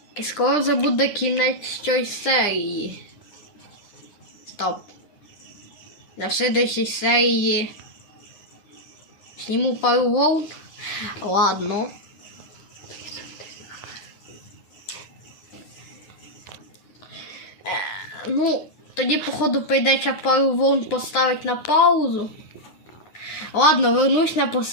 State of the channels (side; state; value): right; late; 9.4 ms